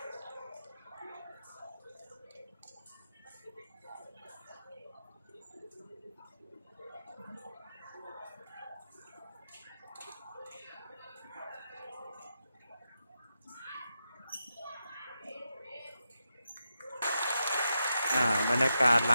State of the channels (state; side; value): inverted; both; correlation -0.87